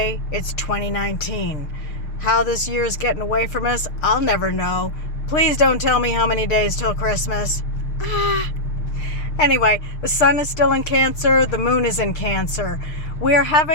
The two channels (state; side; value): late; right; 6.5 ms